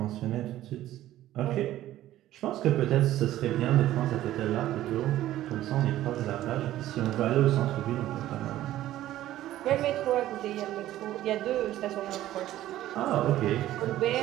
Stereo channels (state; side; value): quieter; left; 13.9 dB